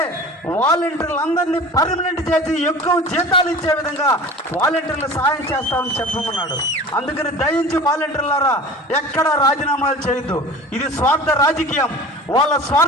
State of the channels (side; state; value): both; normal; correlation 0.39